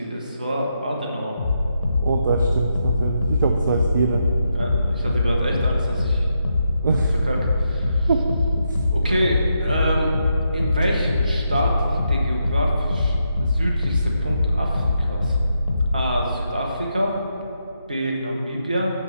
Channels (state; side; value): inverted; both; correlation -0.82